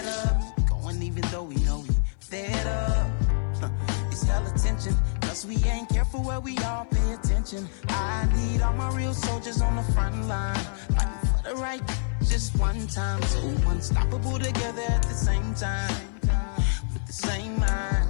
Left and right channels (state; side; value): silent; right; 57 dB below the other